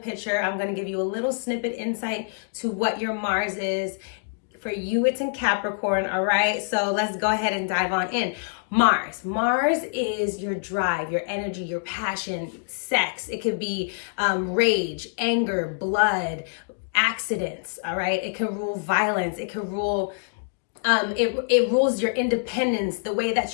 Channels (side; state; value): right; silent; digital silence